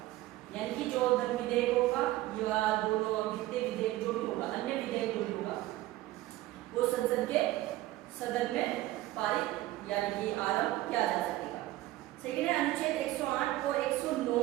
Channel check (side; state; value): left; quieter; 16.5 dB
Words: यानी कि जो धन विधेयक होगा या दोनों वित्तीय विधेयक जो भी होगा, अन्य विधेयक जो भी होगा, वो संसद के सदन में पारित यानी कि आरंभ किया जा सकेगा। सेकेंड है अनुच्छेद 108 और 109